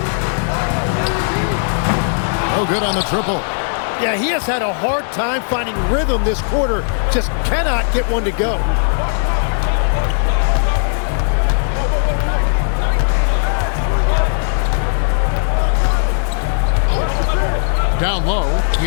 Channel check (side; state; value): right; silent; 68 dB below the other